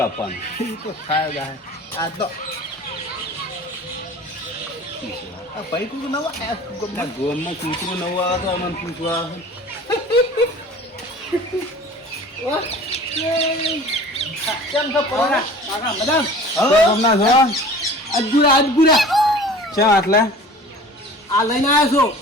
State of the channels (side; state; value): both; normal; correlation 0.43